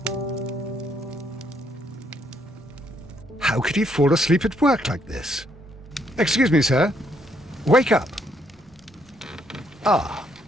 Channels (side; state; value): both; normal; correlation 0.71